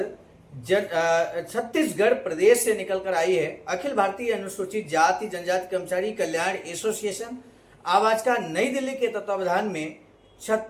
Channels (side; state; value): both; identical; correlation 1.00